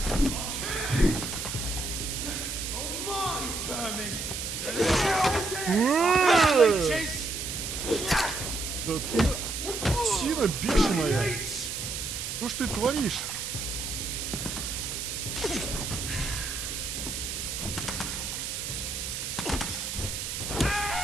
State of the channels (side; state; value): right; noise; hiss, 4 dB below the sound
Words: Oh my vermin. Да ты сина бешеная. Что ж ты творишь?